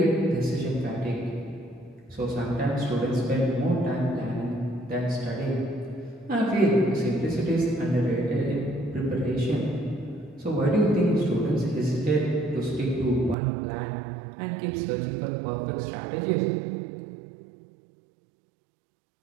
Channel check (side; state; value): left; drops out; at 13.4 s